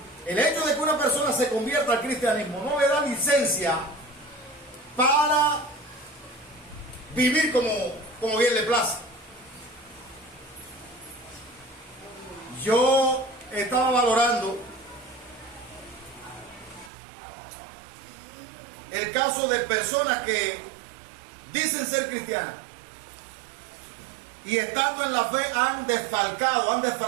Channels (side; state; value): left; drops out; at 16.9 s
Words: el hecho de que una persona se convierta al cristianismo no le da licencia para vivir como bien le place. Yo estaba valorando el caso de personas que dicen ser cristianas y estando en la fe han desfalcado, han